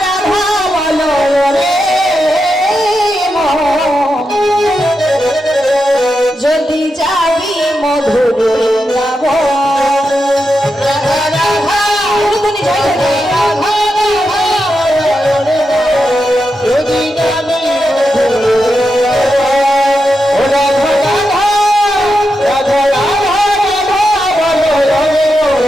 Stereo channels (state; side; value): normal; both; correlation 0.87